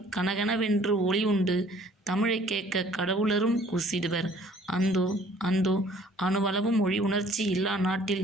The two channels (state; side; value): normal; both; correlation 0.56